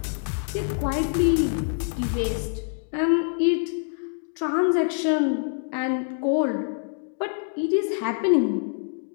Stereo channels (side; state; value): right; silent; digital silence